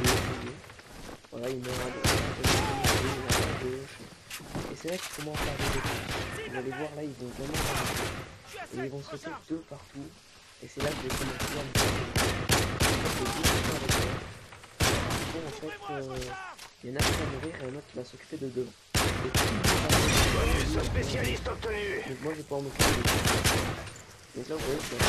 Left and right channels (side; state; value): both; identical; correlation 1.00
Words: voilà, il meurt à gauche, et c'est là qu'ils commencent à arriver. Vous allez voir là, ils vont vraiment arriver, et ils vont sauter deux partout, et c'est là que je vais commencer à me faire bon, en fait, il y en a qui va mourir et un autre qui va s'occuper de deux. Bonus spécialiste obtenu. Donc moi je vais pouvoir m'occuper de deux. Donc là vous voyez que il